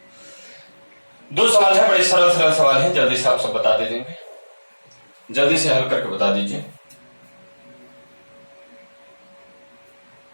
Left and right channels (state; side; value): inverted; both; correlation -1.00